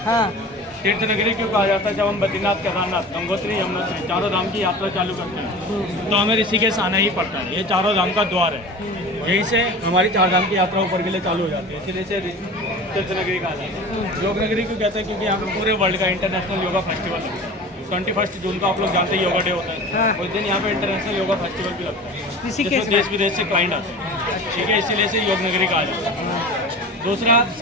हाँ। तीर्थ नगरी क्यों कहा जाता है? जब हम बद्रीनाथ, केदारनाथ, गंगोत्री, यमुनोत्री चारों धाम की यात्रा चालू करते हैं तो हमें ऋषिकेश आना ही पड़ता है। ये चारों धाम का द्वार है, यहीं से हमारी चार धाम की यात्रा ऊपर के लिए चालू हो जाती है, इसीलिए से तीर्थ नगरी कहा जाता है। योग नगरी क्यों कहते हैं? क्योंकि यहाँ पे पूरे वर्ल्ड का इंटरनेशनल योगा फेस्टिवल लगता है। 21 जून को आप लोग जानते हैं योगा डे होता है। हाँ। उस दिन यहाँ पे इंटरनेशनल योगा फेस्टिवल भी लगता है, ऋषिकेश जिसमें देश विदेश से क्लाइंट आते हैं। ठीक है, इसीलिए से योग नगरी कहा जाता है। दूसरा,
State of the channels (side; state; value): both; normal; correlation 0.36